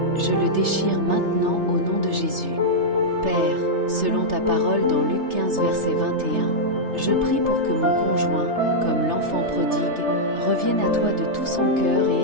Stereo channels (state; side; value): late; left; 3.3 ms